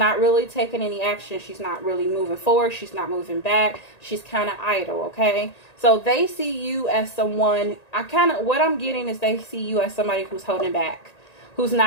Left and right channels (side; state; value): right; late; 1.9 ms